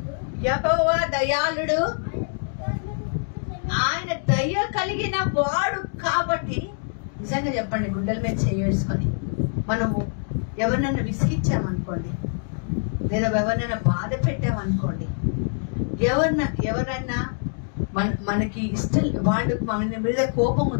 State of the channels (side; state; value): right; silent; digital silence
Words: యెహోవా దయాళుడు, ఆయన దయ కలిగిన వాడు కాబట్టి. నిజంగా చెప్పండి, గుండెల మీద చేసుకొని మనము ఎవరినైనా విసిగించామనుకోండి, లేదా ఎవరినైనా బాధ పెట్టామనుకోండి, ఎవరైనా మనకి ఇష్టం, వాళ్ళు మన మీద కోపం